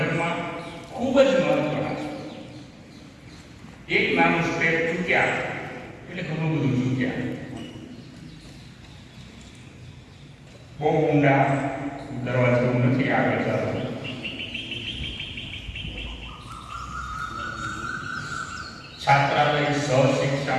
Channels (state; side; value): identical; both; correlation 1.00